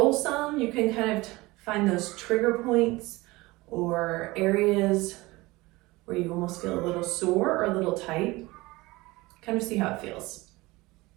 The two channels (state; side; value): quieter; left; 21.3 dB